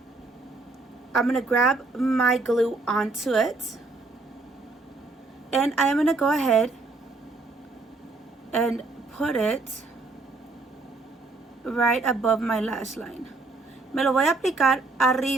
I'm going to grab my glue onto it. And I am going to go ahead and put it right above my lash line. Me lo voy a aplicar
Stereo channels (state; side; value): quieter; left; 3.4 dB